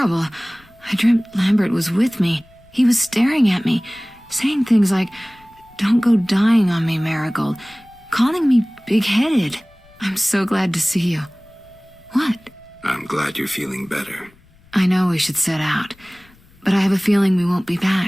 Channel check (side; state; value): left; noise; rumble, 29 dB below the sound